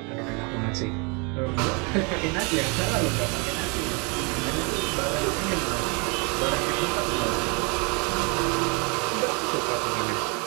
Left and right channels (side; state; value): left; quieter; 32.3 dB